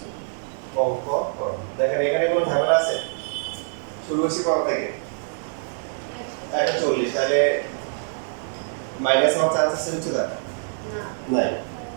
অঙ্ক করো। দেখেন এখানে কোনো ঝামেলা আছে? শুরু করছি কত থেকে? 140, তাহলে মাইনাস হওয়ার চান্স আছে উচ্চতা? না নাই।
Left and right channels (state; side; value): silent; left; 62 dB below the other